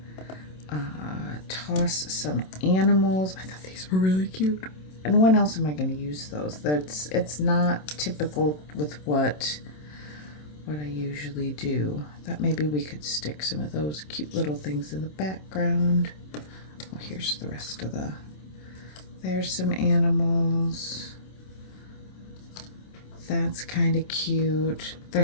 toss some animals. I thought these were really cute. And when else am I going to use those? It's not typical with what I usually do. I thought maybe we could stick some of those cute little things in the background. Oh, here's the rest of the, there's some animals. That's kind of cute.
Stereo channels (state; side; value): late; right; 27 ms